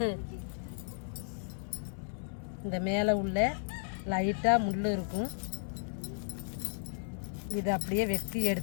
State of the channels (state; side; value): silent; right; 55 dB below the other